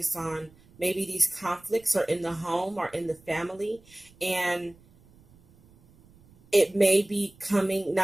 on maybe these conflicts are in the home or in the family, and it may be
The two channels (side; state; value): right; noise; rumble, 28 dB below the sound